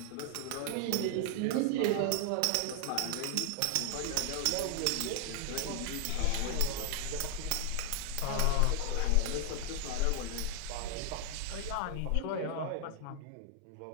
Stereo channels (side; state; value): both; different; correlation -0.01